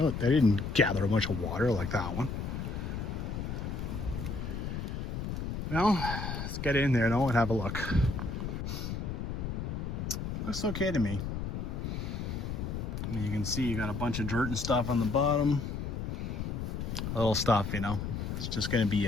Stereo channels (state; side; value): noise; left; rumble, 4 dB below the sound